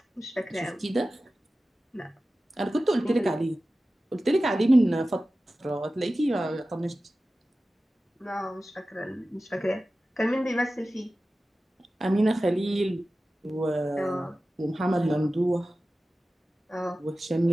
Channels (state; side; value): normal; both; correlation 0.95